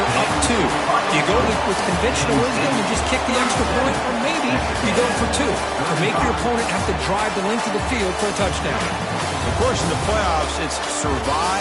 up 2. Do you go with conventional wisdom and just kick the extra point, or maybe you go for 2, or make your opponent have to drive the length of the field for a touchdown? Of course, in the playoffs, it's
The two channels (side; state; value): both; identical; correlation 1.00